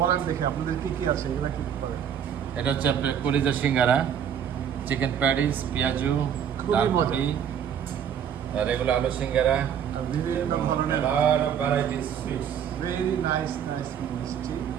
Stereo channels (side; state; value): left; quieter; 8.6 dB